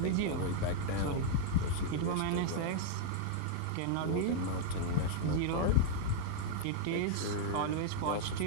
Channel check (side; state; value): both; different; correlation -0.01